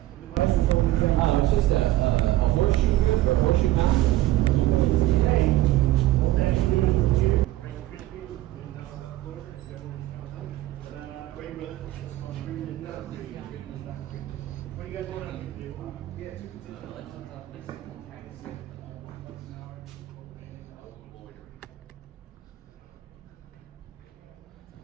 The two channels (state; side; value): quieter; left; 15.6 dB